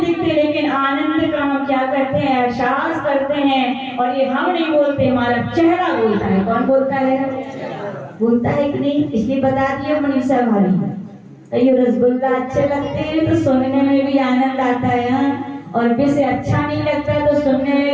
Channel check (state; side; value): identical; both; correlation 1.00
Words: दिखते, लेकिन आनंद का हम क्या करते हैं? एहसास करते हैं। और ये हम नहीं बोलते, हमारा चेहरा बोलता है। कौन बोलता है? बोलता है कि नहीं? इसलिए बता दिया मनीषा भाभी, ये रसगुल्ला अच्छे लगते हैं तो सुनने में भी आनंद आता है, हाँ? और वैसे अच्छा नहीं लगता तो सुनने